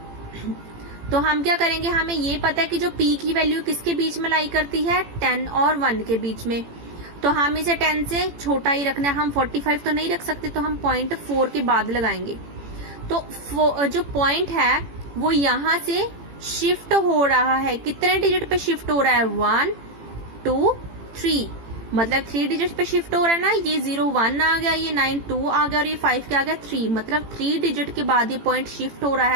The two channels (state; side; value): late; left; 18 ms